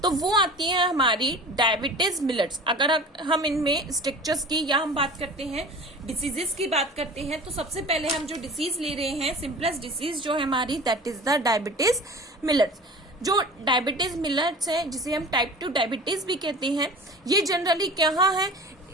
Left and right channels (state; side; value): normal; both; correlation 0.39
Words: तो वो आती है हमारी डायबिटीज मिलेट्स। अगर हम इनमें स्ट्रक्चर्स की या हम बात करते हैं डिसीजेस की बात करते हैं, तो सबसे पहले हम जो डिसीज ले रहे हैं, सिंपलेस्ट डिसीज जो है हमारी, that is the diabetes millets. जो डायबिटीज मिलेट्स है, जिसे हम टाइप 2 डायबिटीज भी कहते हैं, ये जनरली क्या है,